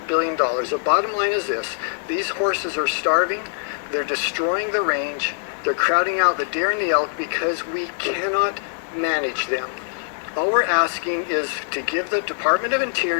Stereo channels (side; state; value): right; silent; digital silence